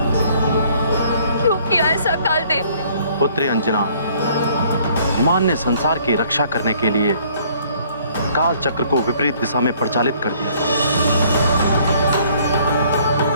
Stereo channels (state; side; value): inverted; both; correlation -0.60